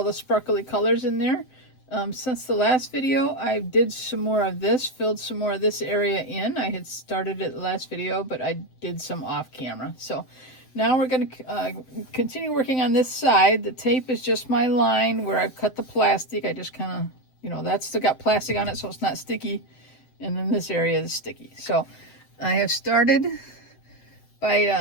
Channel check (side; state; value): right; late; 7.8 ms